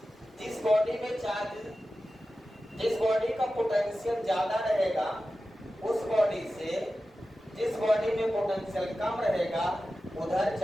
जिस बॉडी में चार्ज, जिस बॉडी का पोटेंशियल ज्यादा रहेगा उस बॉडी से जिस बॉडी में पोटेंशियल कम रहेगा उधर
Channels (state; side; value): normal; both; correlation 0.94